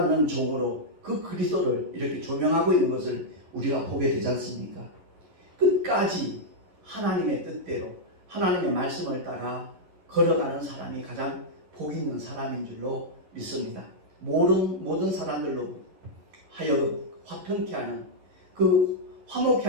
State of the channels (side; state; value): left; late; 11 ms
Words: 종으로 그 그리스도를 이렇게 조명하고 있는 것을 우리가 보게 되지 않습니까? 끝까지 하나님의 뜻대로 하나님의 말씀을 따라 걸어가는 사람이 가장 복 있는 사람인 줄로 믿습니다. 모든 사람들로 하여금 화평케 하는, 그 화목케